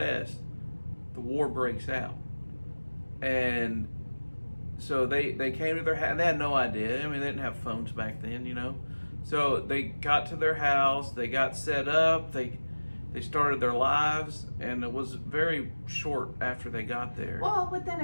the war breaks out. And so they came to their house, and they had no idea. I mean, they didn't have phones back then, you know. So they got to their house, they got set up, they started their lives, and it was very short after they got there. Well, within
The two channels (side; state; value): both; inverted; correlation -1.00